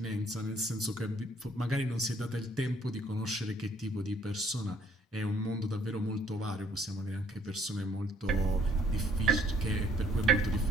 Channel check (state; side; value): normal; both; correlation 0.63